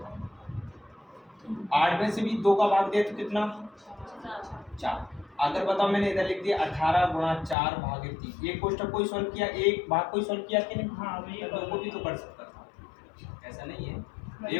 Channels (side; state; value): right; drops out; at 7.6 s